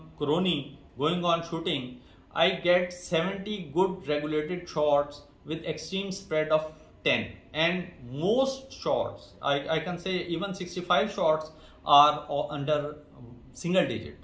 Crony going on shooting, I get 70 good regulated shots with extreme spread of 10, and most shots, I can say even 65 shots are under single digit.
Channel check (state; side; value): identical; both; correlation 1.00